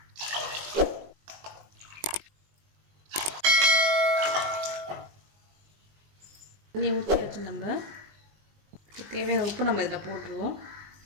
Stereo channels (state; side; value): late; left; 20 ms